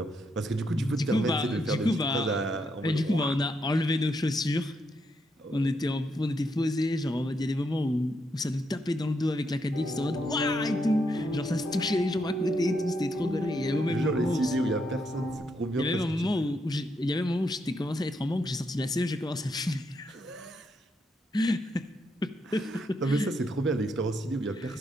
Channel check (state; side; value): normal; both; correlation 0.79